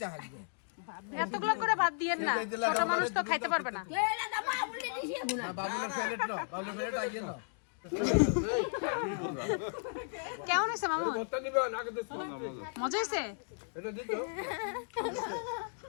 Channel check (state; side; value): silent; right; digital silence